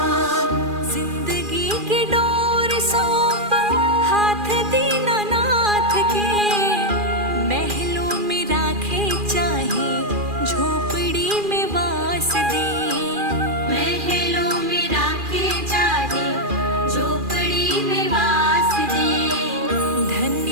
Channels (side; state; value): left; late; 2.4 ms